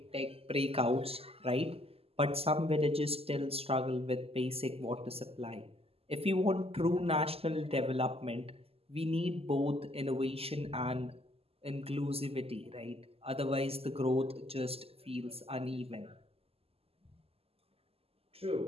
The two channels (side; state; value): left; late; 0.29 ms